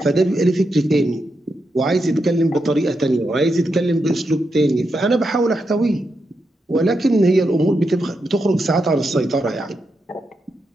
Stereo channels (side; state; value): both; normal; correlation 0.85